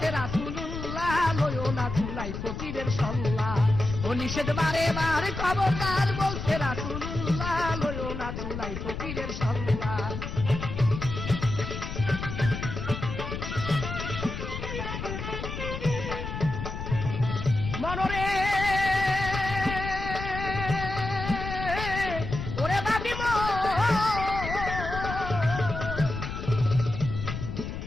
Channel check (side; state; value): left; noise; rumble, 6 dB below the sound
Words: রাসূলুল্লাহ, লয়ো না চুলাই ফকিরের সল্লা। ও নিষেধ বারে বারে খবরদার বলছে রাসূলুল্লাহ, লয়ো না চুলাই ফকিরের সল্লা।